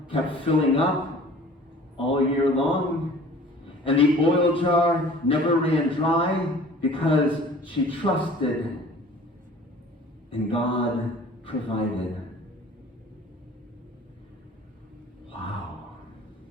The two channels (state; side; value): normal; both; correlation 0.47